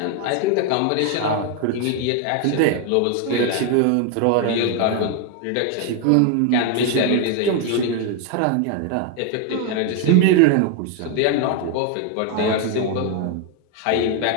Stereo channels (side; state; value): both; different; correlation 0.01